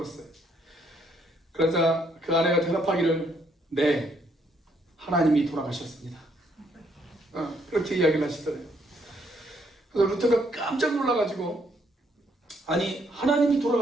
그러자 그 아내가 대답하기를 네, 하나님이 돌아가셨습니다. 그렇게 이야기를 하시더래요. 그래서 루터가 깜짝 놀라가지고 아니 하나님이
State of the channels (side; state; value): both; normal; correlation 0.70